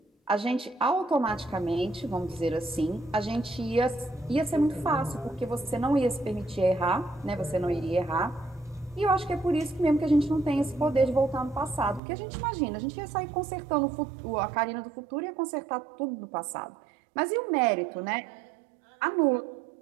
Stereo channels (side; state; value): left; drops out; at 12.0 s